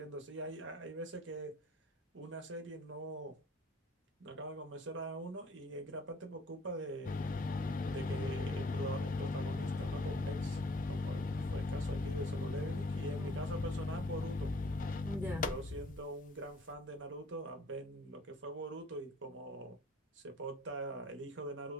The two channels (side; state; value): both; normal; correlation 0.57